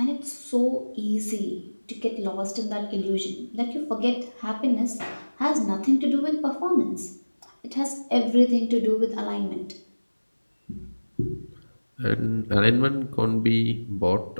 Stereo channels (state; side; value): inverted; both; correlation -1.00